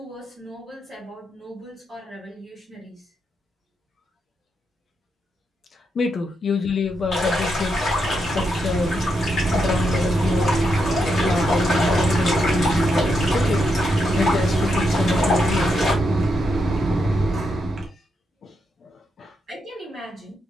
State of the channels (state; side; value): normal; both; correlation 0.82